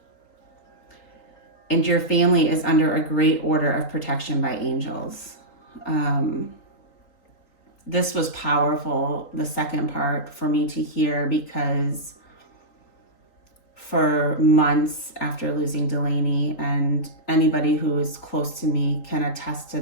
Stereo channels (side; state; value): right; late; 3.9 ms